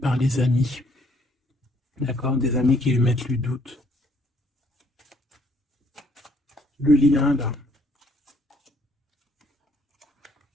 les amis. D'accord? Des amis qui lui mettent le doute. Le lien, là.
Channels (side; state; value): both; normal; correlation 0.65